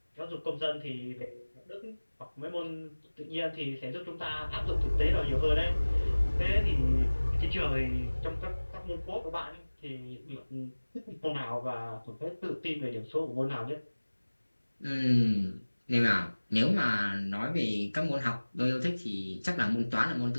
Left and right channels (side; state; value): both; inverted; correlation -1.00